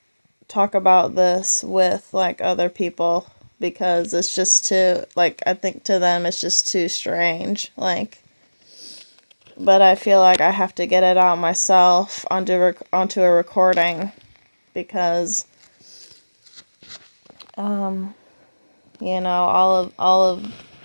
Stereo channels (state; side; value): inverted; both; correlation -1.00